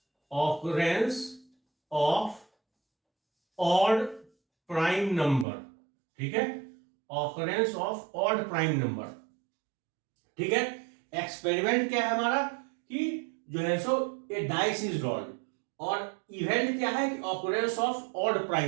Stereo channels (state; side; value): drops out; left; at 5.5 s